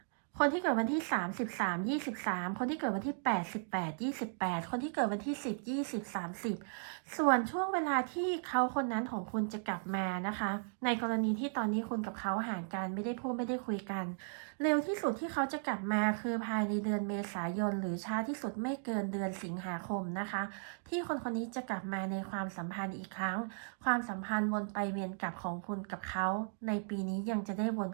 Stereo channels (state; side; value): silent; left; digital silence